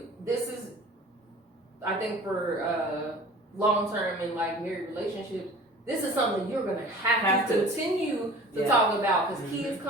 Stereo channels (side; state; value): both; normal; correlation 0.44